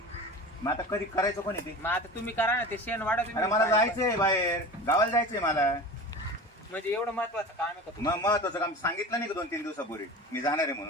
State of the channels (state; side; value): normal; both; correlation 0.34